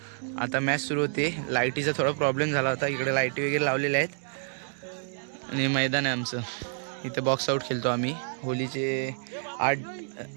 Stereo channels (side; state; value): left; silent; digital silence